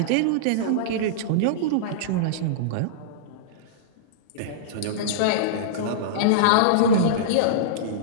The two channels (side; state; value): both; different; correlation -0.03